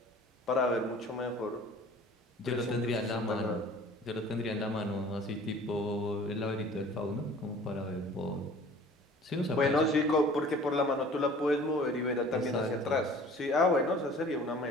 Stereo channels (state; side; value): normal; both; correlation 0.48